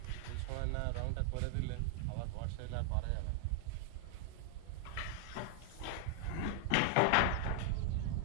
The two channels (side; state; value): both; different; correlation 0.00